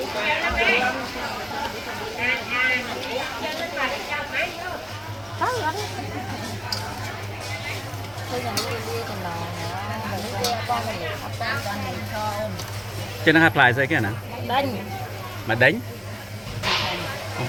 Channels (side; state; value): both; identical; correlation 1.00